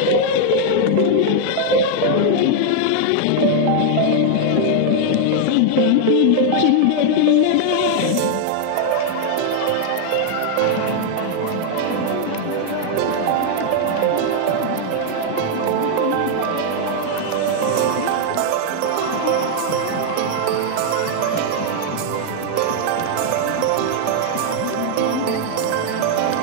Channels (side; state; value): both; different; correlation 0.00